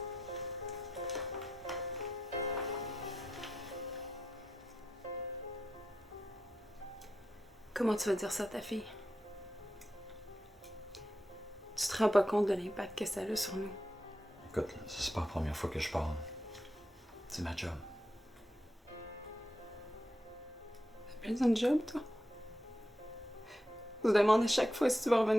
Comment tu vas dire ça à ta fille? Tu te rends pas compte de l'impact que ça a sur nous? Écoute, c'est pas la première fois que je parle. C'est ma job. T'as besoin de job, toi? On se demande à chaque fois si tu vas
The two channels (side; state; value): both; normal; correlation 0.87